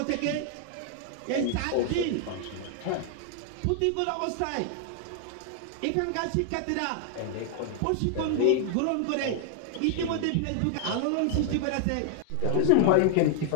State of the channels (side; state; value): both; different; correlation 0.00